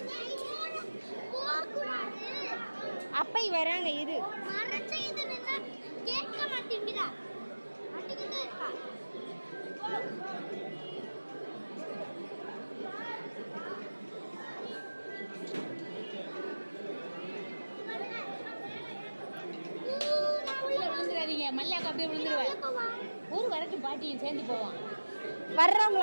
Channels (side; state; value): both; inverted; correlation -1.00